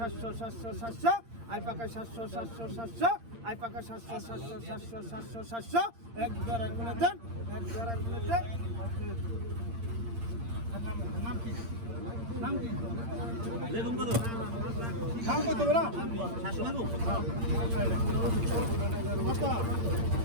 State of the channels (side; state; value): left; late; 8.7 ms